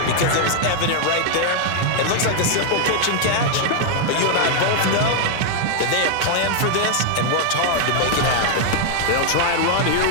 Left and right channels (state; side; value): different; both; correlation 0.00